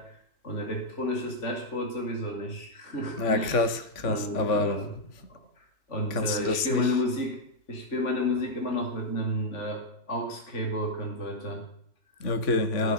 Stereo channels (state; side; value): late; right; 3.5 ms